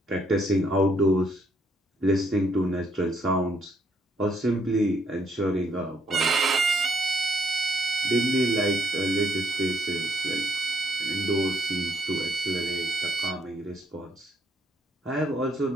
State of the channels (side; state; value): both; normal; correlation 0.70